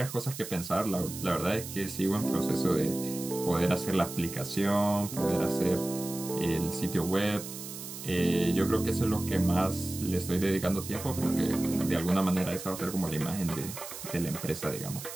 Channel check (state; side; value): noise; right; hiss, 10 dB below the sound